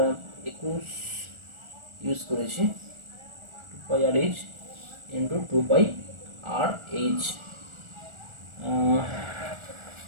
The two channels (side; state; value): left; late; 1.4 ms